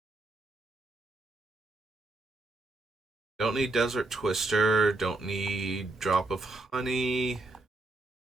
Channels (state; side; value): quieter; left; 3.1 dB